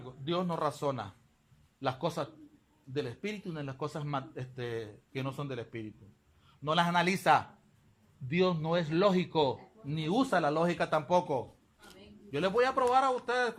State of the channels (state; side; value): identical; both; correlation 1.00